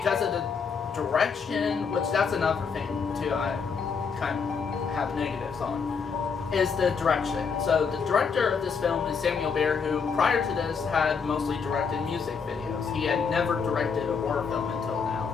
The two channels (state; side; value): quieter; right; 5.8 dB